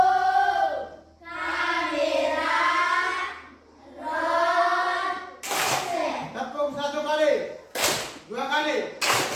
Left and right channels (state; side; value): identical; both; correlation 1.00